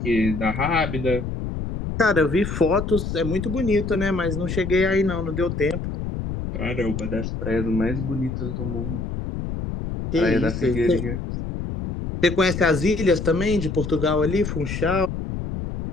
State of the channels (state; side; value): noise; left; rumble, 5 dB below the sound